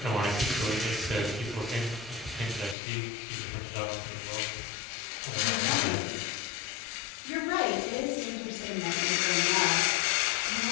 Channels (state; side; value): drops out; right; at 2.8 s